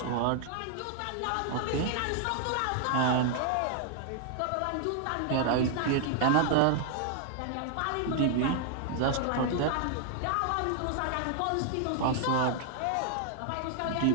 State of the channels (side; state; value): both; different; correlation 0.00